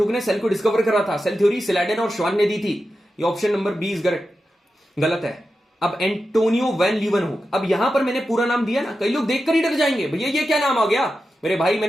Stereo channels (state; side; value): normal; both; correlation 0.91